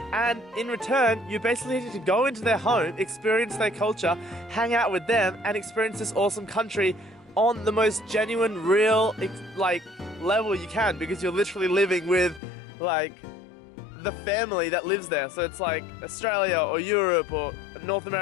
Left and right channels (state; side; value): drops out; right; at 12.4 s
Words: And in return, you basically need to go into their home, experience their culture, hang out with them, and experience this awesome country on the most genuine, real, like, level you can, because you're literally living with, like, the family that lives there. So it's like Australia or Europe or North